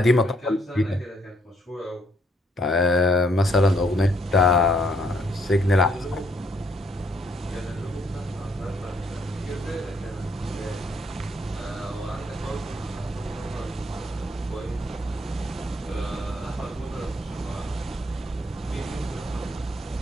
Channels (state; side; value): normal; both; correlation 0.69